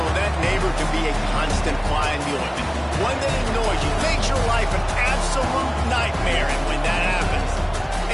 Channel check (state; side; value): identical; both; correlation 1.00